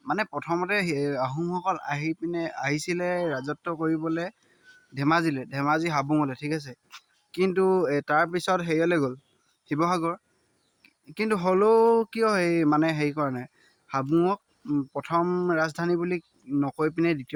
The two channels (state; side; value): identical; both; correlation 1.00